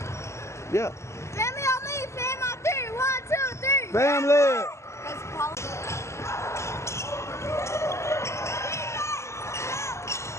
Yeah. Family on me. Fam on 3. 1, 2, 3. Family!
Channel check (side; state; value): right; late; 0.13 ms